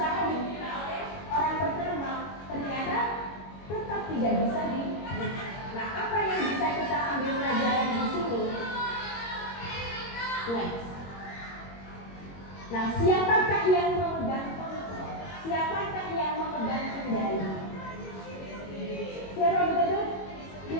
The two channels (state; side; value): late; right; 21 ms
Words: dibuka oleh orang pertama, ternyata tetap tidak bisa dibuka. Nah, apa yang bisa kita ambil pelajaran di sini? Next. Nah, siapakah yang memegang kontrol? Siapakah yang memegang kendali? Siapa begitu?